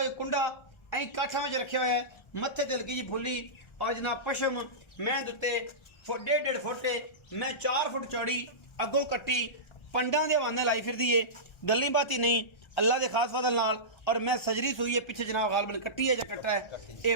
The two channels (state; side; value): late; right; 1.3 ms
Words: कुंडा ऐ काठा में रखे हुए है मत्थे ते हल्की जी फुली और जनाब पशम मैं दुते 1.5 फुट मैं 4 फुट चौड़ी अगों कट्टी पंडा दे हवाने लाई फिरदी है। गल्ली बाती नहीं अल्लाह के खास फजल नाल और मैं सजरी सुई है पिछे जनाब गालबन कट्टी है या कट्टा है ये